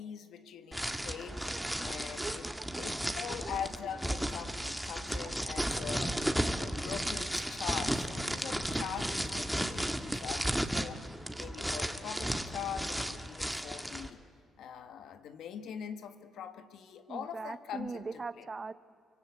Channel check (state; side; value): normal; both; correlation 0.90